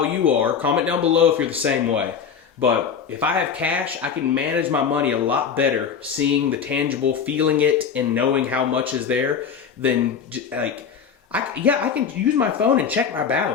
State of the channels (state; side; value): quieter; right; 6.9 dB